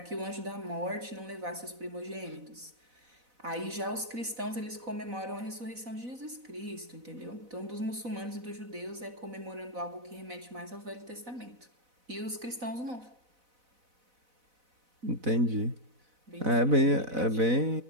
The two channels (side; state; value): left; late; 4.0 ms